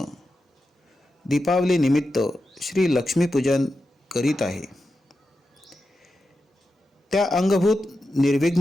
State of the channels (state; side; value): normal; both; correlation 0.90